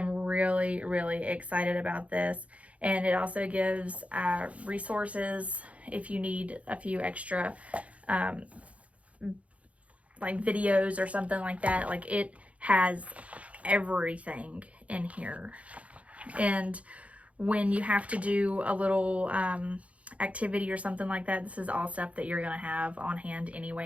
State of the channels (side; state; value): left; late; 0.065 ms